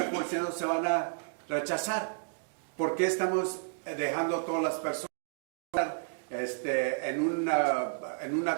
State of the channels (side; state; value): left; silent; digital silence